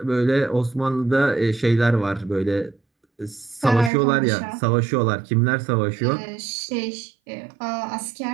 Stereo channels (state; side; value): drops out; left; at 3.9 s